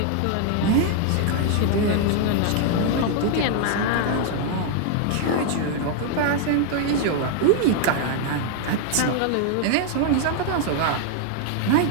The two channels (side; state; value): both; different; correlation 0.00